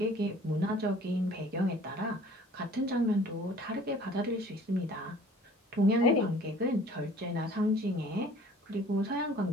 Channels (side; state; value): both; normal; correlation 0.51